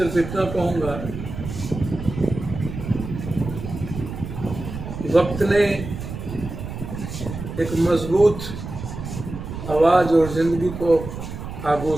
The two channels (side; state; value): right; noise; rumble, 8 dB below the sound